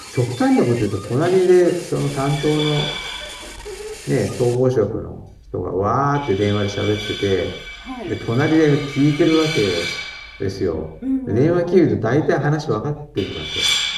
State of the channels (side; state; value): both; identical; correlation 1.00